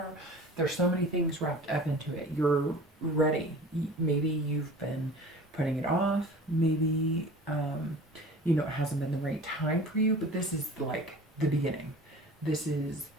There's so many things wrapped up into it. You're ready. Maybe you've been putting it off. Maybe, it hasn't been the right time for you, but this is like the beginning. This is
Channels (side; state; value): both; normal; correlation 0.41